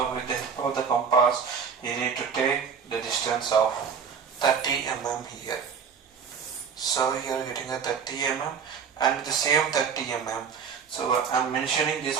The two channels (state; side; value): quieter; left; 6.6 dB